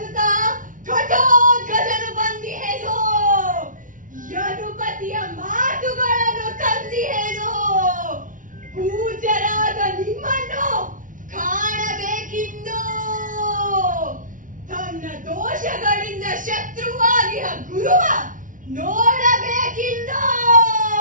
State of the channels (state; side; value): late; left; 0.38 ms